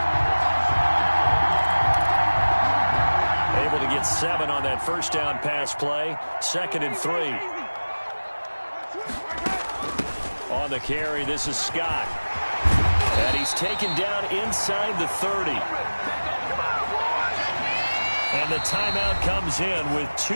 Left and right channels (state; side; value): inverted; both; correlation -1.00